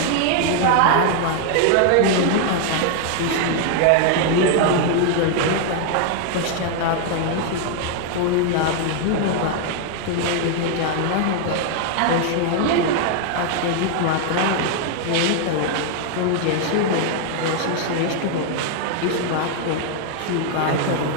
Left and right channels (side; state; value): both; different; correlation 0.00